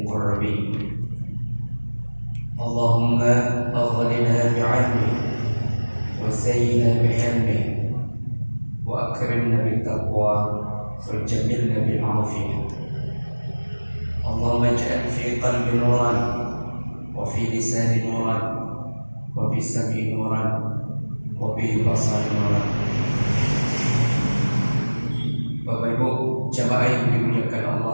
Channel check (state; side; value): inverted; both; correlation -1.00